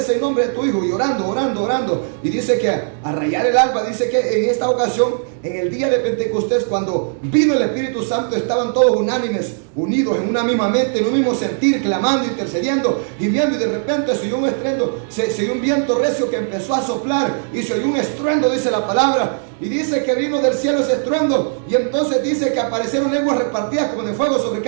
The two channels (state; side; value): silent; left; digital silence